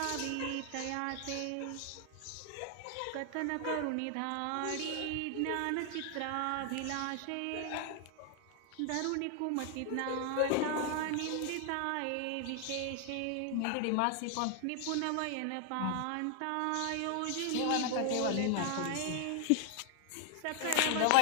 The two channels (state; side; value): different; both; correlation 0.00